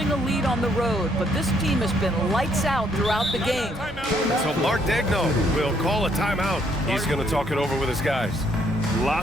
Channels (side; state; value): both; normal; correlation 0.69